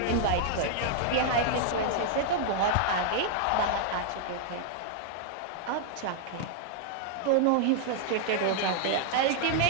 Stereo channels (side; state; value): both; different; correlation -0.01